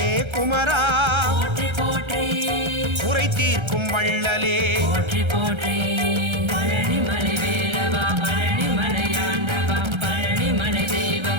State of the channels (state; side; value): late; left; 1.3 ms